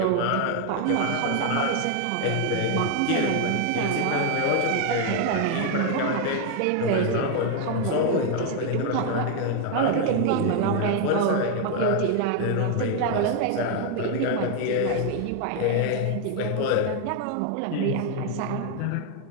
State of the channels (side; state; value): both; different; correlation 0.01